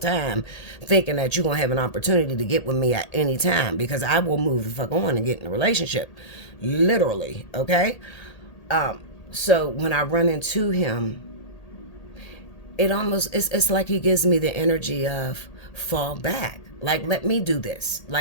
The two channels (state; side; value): late; right; 1.8 ms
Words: thinking that you're gonna have an opportunity to get with me at any time, because I will move the fuck on and get in a relationship, literally. Okay. So when I run into him, it almost, it's like he gives me the energy of fall back, like, let me do this,